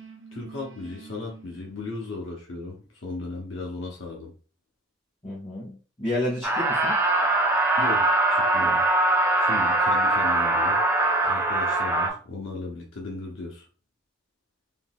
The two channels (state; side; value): normal; both; correlation 0.39